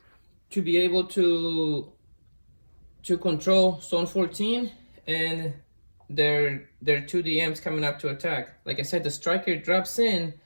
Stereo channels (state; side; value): inverted; both; correlation -1.00